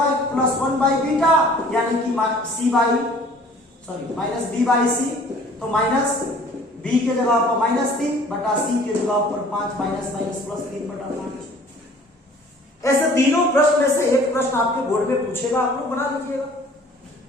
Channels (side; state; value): both; normal; correlation 0.51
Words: plus 1 by beta, यानी कि माइनस बी बाई सी, तो माइनस बी के जगह पर माइनस 3 बटा सी के जगह पर 5, माइनस माइनस प्लस 3 बटा 5। ऐसे तीनों प्रश्न में से एक प्रश्न आपके बोर्ड में पूछेगा, आप लोग बना लीजिएगा।